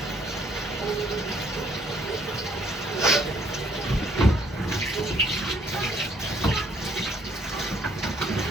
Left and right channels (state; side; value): normal; both; correlation 0.64